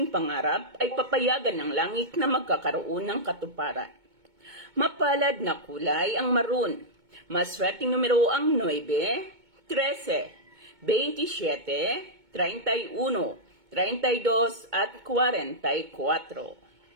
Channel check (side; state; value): left; late; 2.2 ms